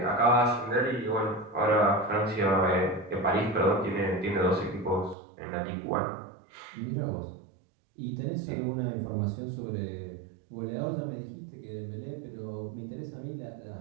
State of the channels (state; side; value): drops out; left; at 5.2 s